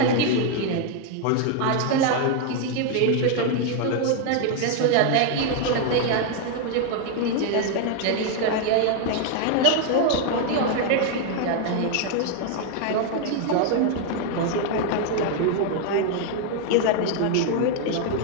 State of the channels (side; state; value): both; different; correlation 0.00